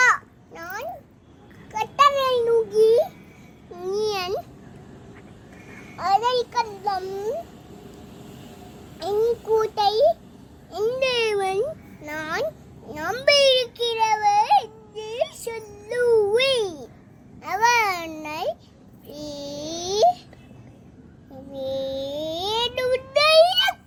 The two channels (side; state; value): both; identical; correlation 1.00